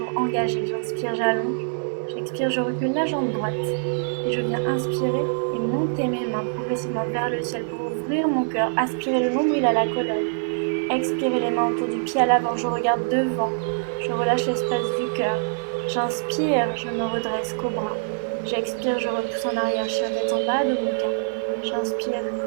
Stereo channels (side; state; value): left; silent; 62 dB below the other